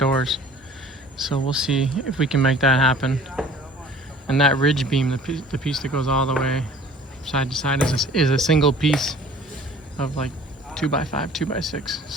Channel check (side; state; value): both; normal; correlation 0.49